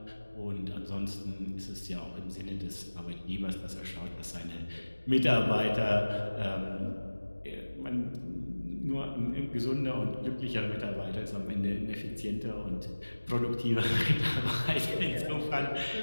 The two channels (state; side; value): inverted; both; correlation -1.00